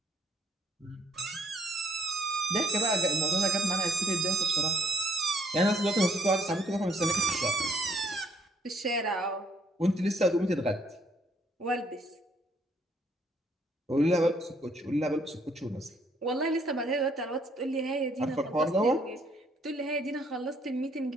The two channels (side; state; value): both; normal; correlation 0.67